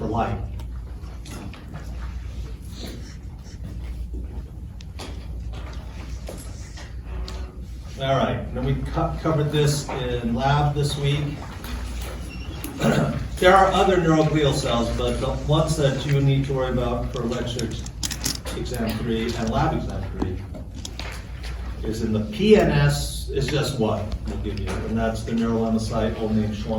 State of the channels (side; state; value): both; identical; correlation 1.00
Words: light. All right, then we covered this in lab this week. There are other neuroglial cells, but the ones that you need to worry about for lecture exam 3 and lab exam 3 is in the PNS, is just one we'll give you, and that's the neurolemmacyte, old name